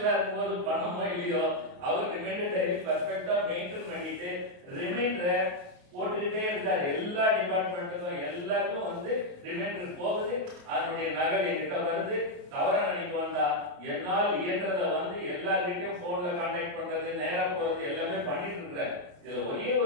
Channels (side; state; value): left; late; 28 ms